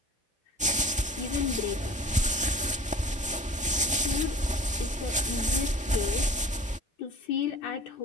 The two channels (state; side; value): normal; both; correlation 0.42